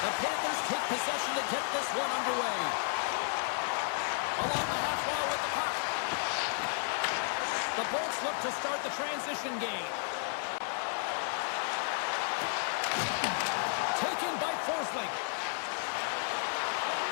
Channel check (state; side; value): silent; right; 56 dB below the other